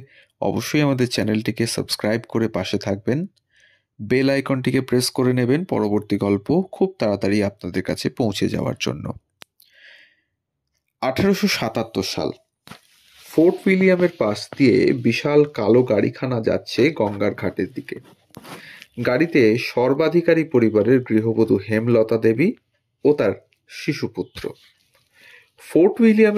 অবশ্যই আমাদের চ্যানেলটিকে সাবস্ক্রাইব করে পাশে থাকবেন। বেল আইকনটিকে প্রেস করে নেবেন পরবর্তী গল্প খুব তাড়াতাড়ি আপনাদের কাছে পৌঁছে যাওয়ার জন্য। 1877 সাল। ফোর্ট উইলিয়ামের পাশ দিয়ে বিশাল কালো গাড়িখানা যাচ্ছে গঙ্গার ঘাটের দিকে। গাড়িতে সর্বাধিকারী পরিবারের গৃহবধূ হেমলতা দেবী ও তার শিশুপুত্র। ফোর্ট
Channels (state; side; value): identical; both; correlation 1.00